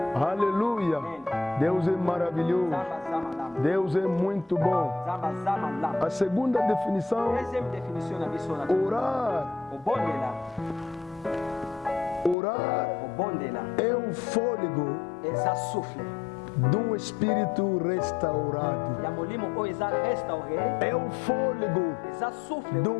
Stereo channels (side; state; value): right; drops out; at 12.4 s